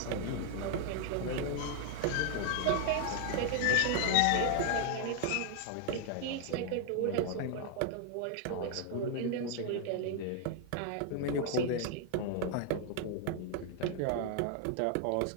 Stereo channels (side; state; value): both; different; correlation 0.00